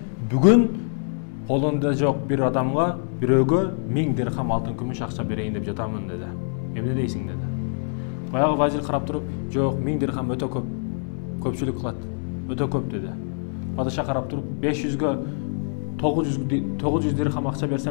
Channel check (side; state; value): right; silent; 62 dB below the other